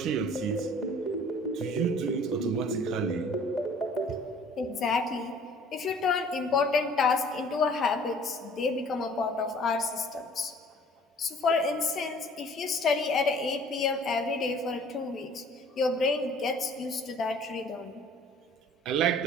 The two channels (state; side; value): normal; both; correlation 0.52